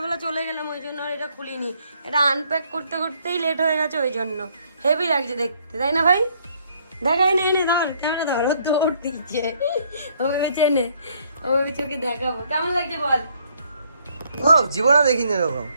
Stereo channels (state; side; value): inverted; both; correlation -0.67